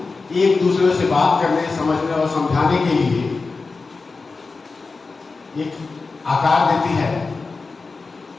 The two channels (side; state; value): right; quieter; 4.1 dB